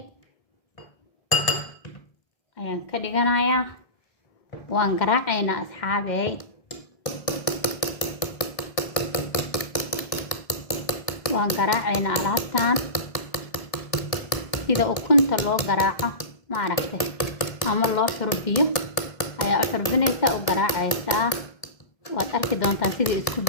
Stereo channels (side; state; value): right; late; 1.7 ms